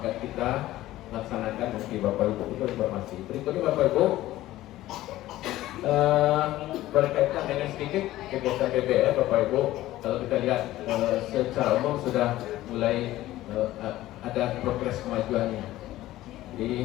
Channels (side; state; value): right; quieter; 15.6 dB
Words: kita laksanakan nanti Bapak Ibu. Itu informasi. Berikutnya Bapak Ibu, berkaitan dengan sedikit kegiatan BBM Bapak Ibu. Kalau kita lihat secara umum sudah mulai ada progres kemajuannya.